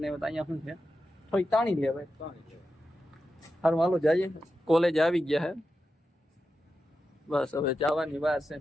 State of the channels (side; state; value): both; normal; correlation 0.90